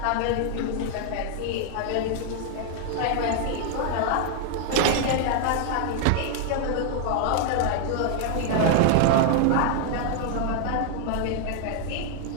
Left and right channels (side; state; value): both; different; correlation 0.00